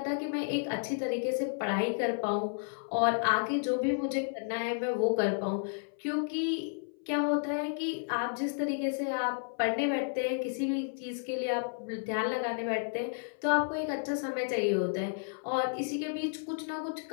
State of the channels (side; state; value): right; silent; 56 dB below the other